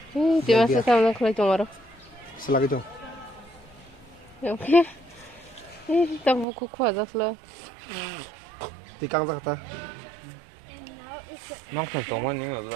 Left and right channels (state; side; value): drops out; left; at 6.5 s